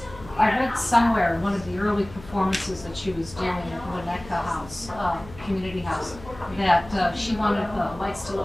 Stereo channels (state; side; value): noise; left; hum, 18 dB below the sound